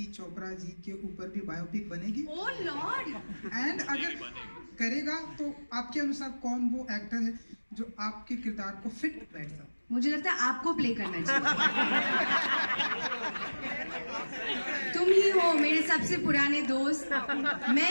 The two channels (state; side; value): inverted; both; correlation -1.00